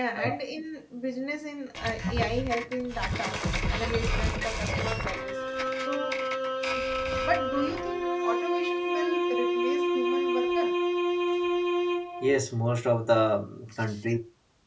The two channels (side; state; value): both; identical; correlation 1.00